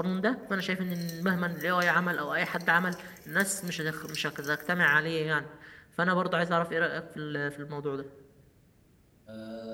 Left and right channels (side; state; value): both; identical; correlation 1.00